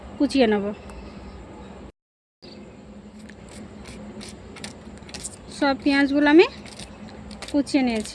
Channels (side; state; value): both; identical; correlation 1.00